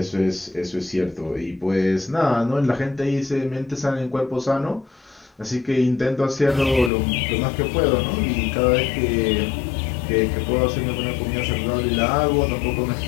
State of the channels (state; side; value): drops out; right; at 6.9 s